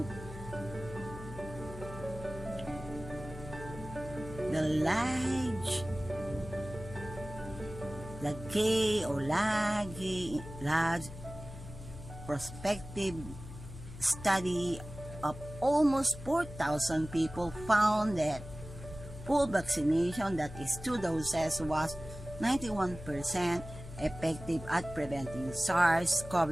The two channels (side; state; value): left; noise; hum, 13 dB below the sound